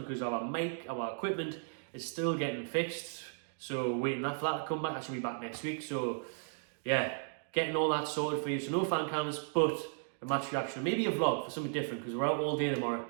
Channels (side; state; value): left; silent; digital silence